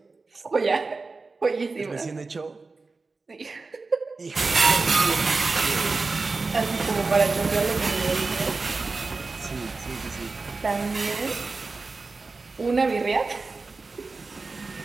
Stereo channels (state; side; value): quieter; left; 3.9 dB